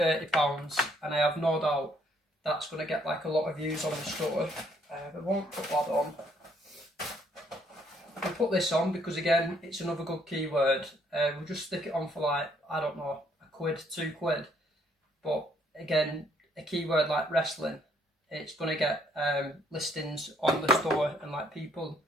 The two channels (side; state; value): both; normal; correlation 0.67